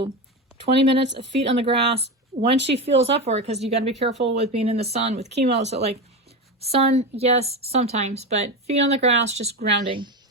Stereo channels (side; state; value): both; normal; correlation 0.19